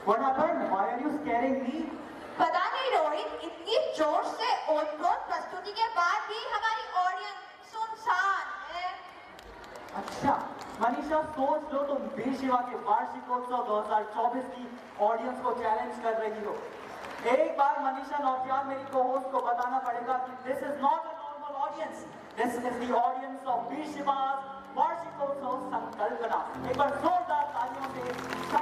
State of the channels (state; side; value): identical; both; correlation 1.00